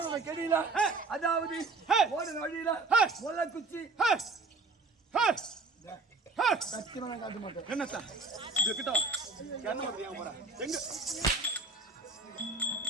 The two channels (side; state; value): left; quieter; 3.7 dB